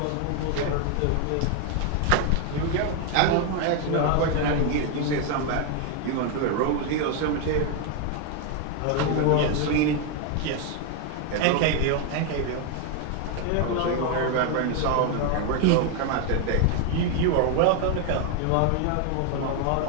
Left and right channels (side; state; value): both; different; correlation 0.01